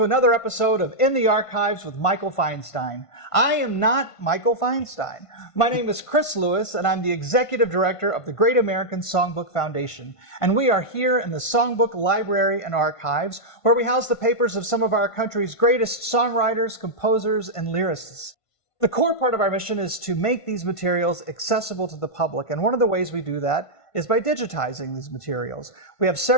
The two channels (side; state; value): right; late; 1.5 ms